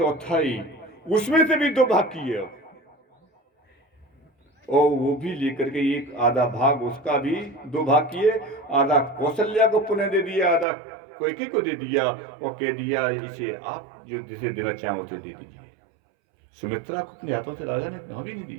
उसमें से भी 2 भाग किए, और वो भी लेकर के एक आधा भाग उसका भी 2 भाग किए, आधा कौशल्या को पुनः दे दिया, आधा कैकेयी को दे दिया, और कह दिया इसे आप जो जिसे देना चाहो उसे दे दीजिए। सुमित्रा को अपने हाथों से राजा ने कहा भी नहीं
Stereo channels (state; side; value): drops out; left; at 10.7 s